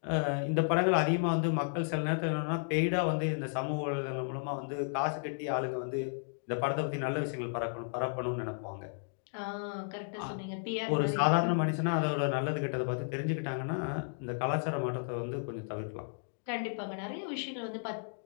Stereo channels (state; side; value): silent; right; digital silence